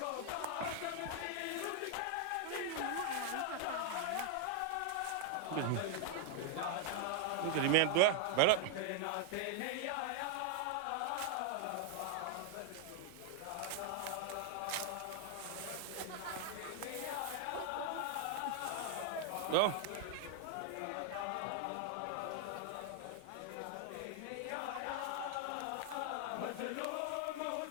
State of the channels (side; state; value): both; different; correlation 0.01